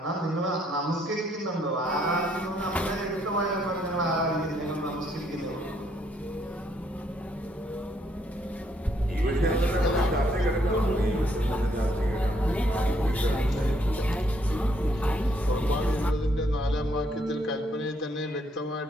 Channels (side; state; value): both; normal; correlation 0.70